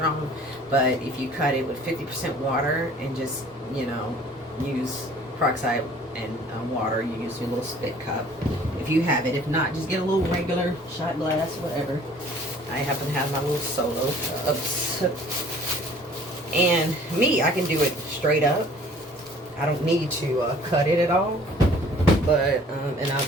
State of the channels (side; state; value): both; normal; correlation 0.52